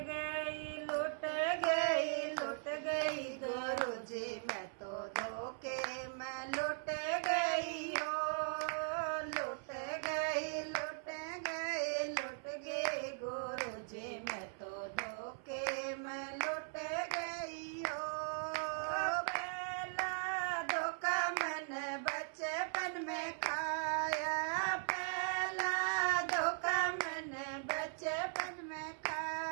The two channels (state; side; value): silent; left; 52 dB below the other